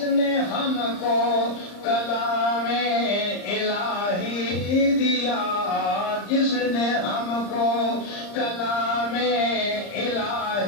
نے ہم کو کلام الہی دیا جس نے ہم کو کلام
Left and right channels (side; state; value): right; late; 35 ms